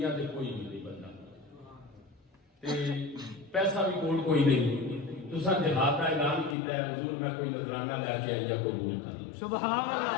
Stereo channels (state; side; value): drops out; right; at 6.6 s